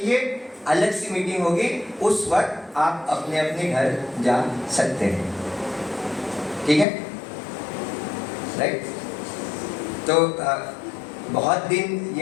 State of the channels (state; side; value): drops out; right; at 6.9 s